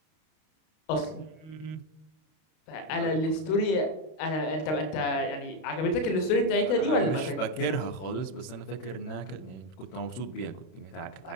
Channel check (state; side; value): late; right; 32 ms